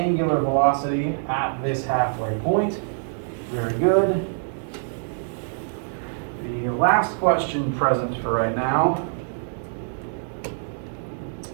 velocity at this halfway point. Very good. The last question present for right now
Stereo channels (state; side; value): silent; left; digital silence